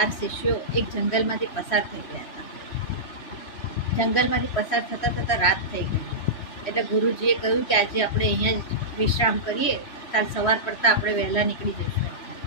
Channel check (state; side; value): late; right; 3.1 ms